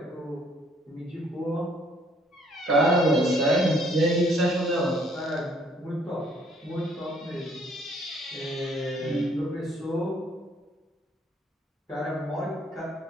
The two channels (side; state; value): both; normal; correlation 0.63